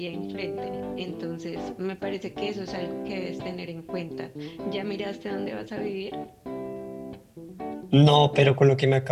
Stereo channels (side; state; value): both; identical; correlation 1.00